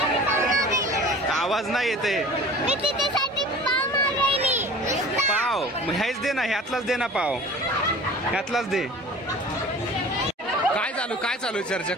आवाज नाही येते. पाव हेच दे ना, ह्यातलाच दे ना पाव, ह्यातलाच दे. काय चालू चर्चा?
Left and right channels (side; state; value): both; normal; correlation 0.42